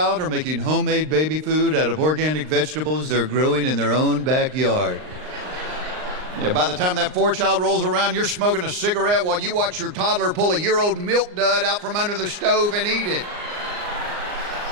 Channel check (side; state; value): left; late; 39 ms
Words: are making homemade baby food out of organic vegetables they're growing in their own backyard. Yeah, by the time that fourth child rolls around, you're smoking a cigarette while you watch your toddler pull a year-old milk dud out from under the stove and eat it.